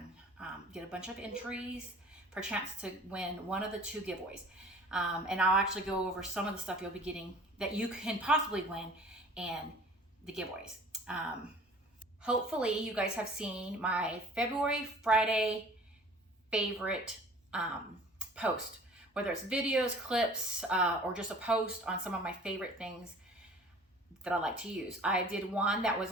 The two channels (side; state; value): both; normal; correlation 0.48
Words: get a bunch of entries for a chance to win one of the 2 giveaways. And I'll actually go over some of the stuff you'll be getting that you can possibly win in the giveaways. Hopefully you guys have seen my February Friday favorite post, whether it's videos, clips, or just a post on some of my favorite things that I like to use. I did one that was